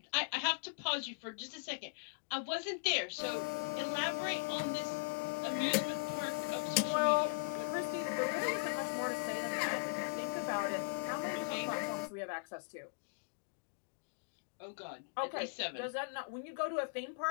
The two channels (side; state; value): right; silent; digital silence